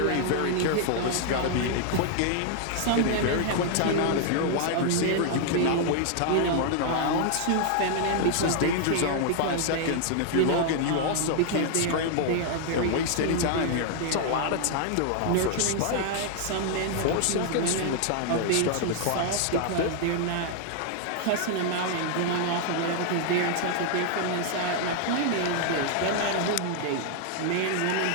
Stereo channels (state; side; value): different; both; correlation 0.00